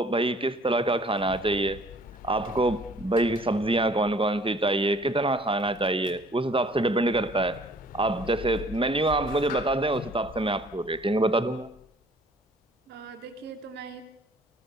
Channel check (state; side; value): normal; both; correlation 0.55